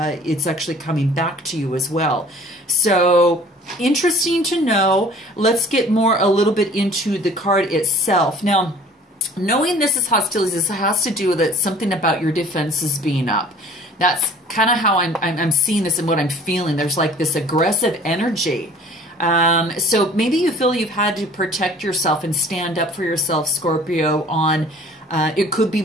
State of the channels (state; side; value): normal; both; correlation 0.50